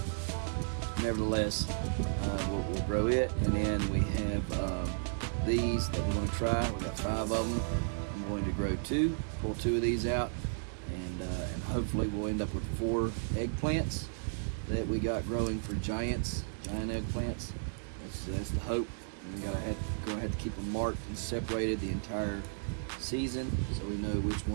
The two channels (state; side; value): silent; left; digital silence